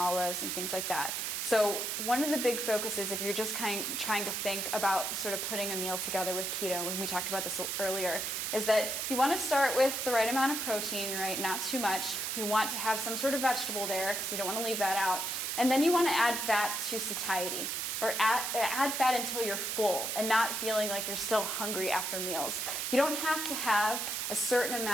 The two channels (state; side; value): noise; right; hiss, 2 dB below the sound